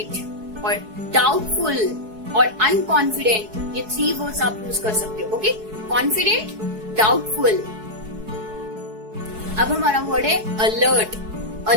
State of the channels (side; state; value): left; late; 4.7 ms